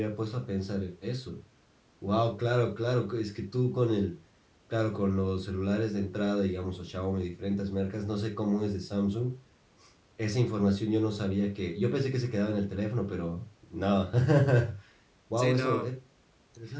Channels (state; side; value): identical; both; correlation 1.00